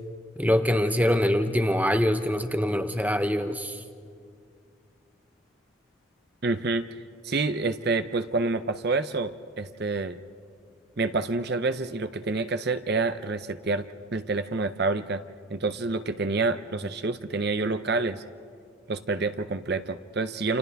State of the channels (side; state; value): both; normal; correlation 0.51